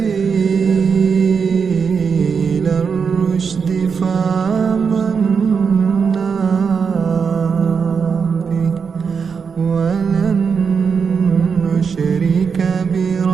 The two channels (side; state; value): left; quieter; 5.9 dB